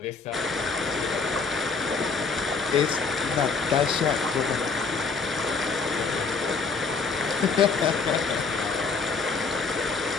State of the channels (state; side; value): quieter; right; 4.7 dB